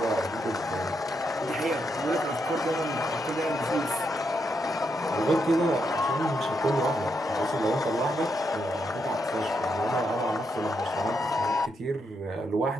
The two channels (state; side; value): normal; both; correlation 0.80